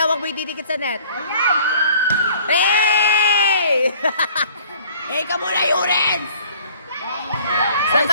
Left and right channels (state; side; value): inverted; both; correlation -0.54